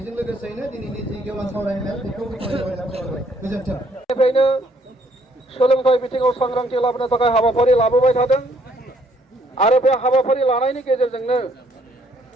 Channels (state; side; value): normal; both; correlation 0.66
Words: लोगोसेनो दिनैनि जि गेवलां सावरायनाय बेखौ गोजोन्थों निफ्रायनो सोलोंथाइ बिथिङाव सांग्रांथि लाबोनो थाखाय हाबाफारि लाबोबाय थादों आरो बे हाबाफारि लानायनि गेजेरजोंनो